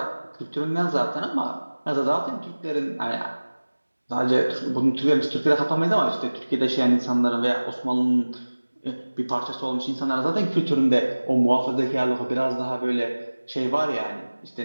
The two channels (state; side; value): inverted; both; correlation -1.00